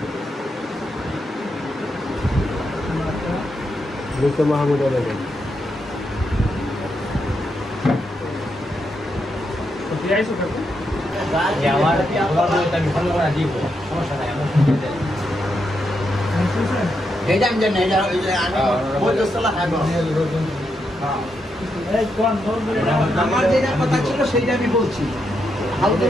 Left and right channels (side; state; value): both; normal; correlation 0.82